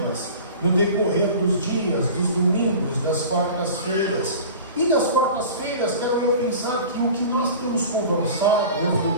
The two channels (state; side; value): inverted; both; correlation -0.38